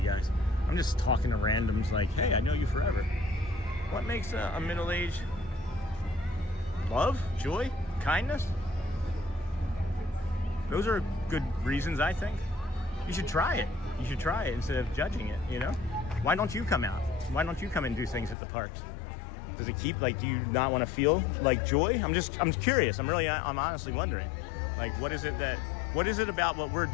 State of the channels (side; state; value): right; drops out; at 18.4 s